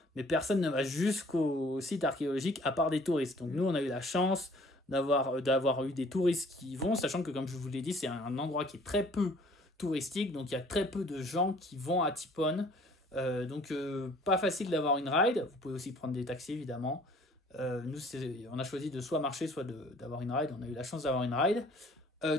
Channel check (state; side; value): normal; both; correlation 0.55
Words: Mais personne ne va jusqu'au site archéologique à part des touristes. Donc nous, on a eu la chance d'avoir eu des touristes qui y vont, sachant que comme je vous l'ai dit, c'est un endroit qui est très peu touristique. Donc il y a très peu de gens qui vont à Tipon. Donc pas facile d'avoir une ride. Vous pouvez aussi prendre des taxis, évidemment. Nous, on a choisi de soit marcher, soit d'avoir une ride. On a eu la chance d'avoir une ride.